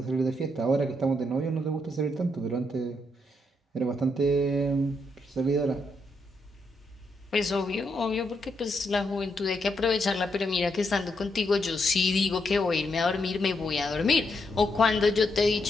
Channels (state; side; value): normal; both; correlation 0.79